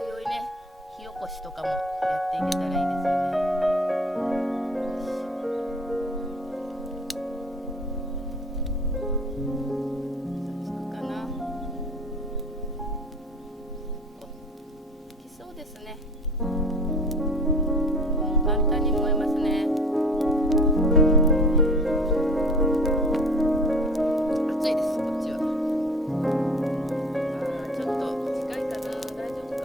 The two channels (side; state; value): both; normal; correlation 0.44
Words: いね、火起こしとかもやっていけたらいいですよね。簡単に燃えますね。